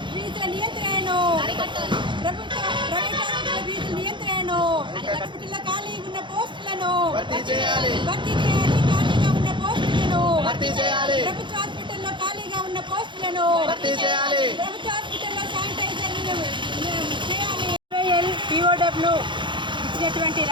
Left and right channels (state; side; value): late; left; 0.23 ms